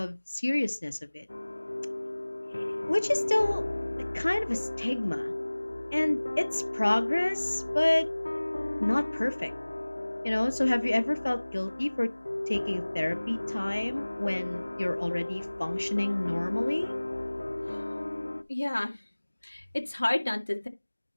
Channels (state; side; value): inverted; both; correlation -1.00